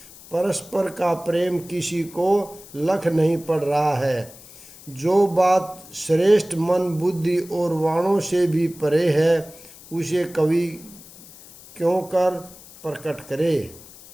परस्पर का प्रेम किसी को लख नहीं पड़ रहा है। जो बात श्रेष्ठ मन बुद्धि और वाणों से भी परे है, उसे कवि क्यों कर प्रकट करे।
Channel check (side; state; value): left; noise; hiss, 20 dB below the sound